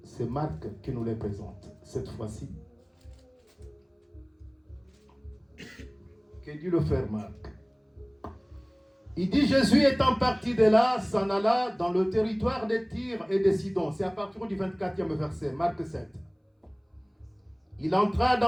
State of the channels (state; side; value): identical; both; correlation 1.00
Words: c'est Marc qui nous les présente cette fois-ci. que dit le frère Marc. Il dit, Jésus étant parti de là, s'en alla dans le territoire de Tyr et de Sidon. C'est à partir du 24e verset, Marc 7. Il entra